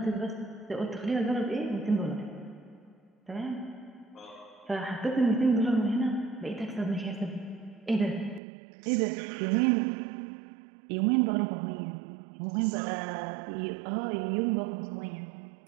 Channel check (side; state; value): left; drops out; at 8.4 s